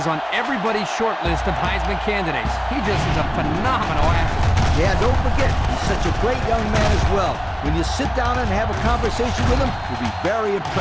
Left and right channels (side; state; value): both; identical; correlation 1.00